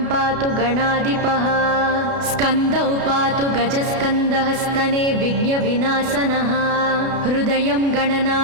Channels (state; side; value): late; left; 32 ms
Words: पातु गणाधिपः स्कन्दौ पातु गजस्कन्दः स्तने विघ्नविनाशनः हृदयं